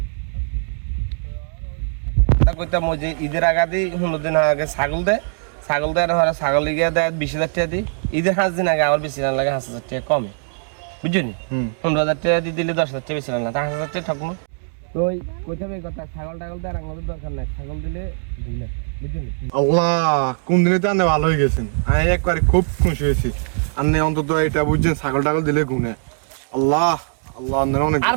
কথা বুঝলি তো আর ওই একটা কথা কইতাম ওই যে ঈদের আগে 15 দিন আগে ছাগল দেয় না ছাগল গিয়ে দেয় 20,000 টাকা দিই ঈদের 5 দিন আগে আবার বেশি না লাগে 5,000 টাকা কমে বুঝলি 15,000 টাকা দিয়ে দিলে 10,000 টাকা বেশি না 5,000 টাকা ঠকমো তো ওই কইতাম এই কথা ছাগল টাগল দেয় আমাদের দরকার নাই ছাগল দিলে গুনে বুঝলি আল্লাহ কোন দিনে তো আনে ভালো হয়ে গেছেন আমি একবারে খুব খুশি হয়েছি আন্নে অন্তত এটা বুঝছেন ছাগল টাগল দিলে গুনে আল্লাহ আল্লাহ আন্নের অনেক আর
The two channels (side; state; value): left; silent; digital silence